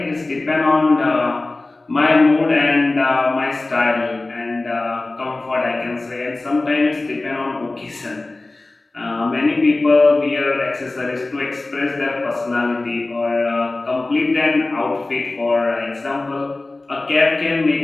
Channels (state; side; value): quieter; right; 3.1 dB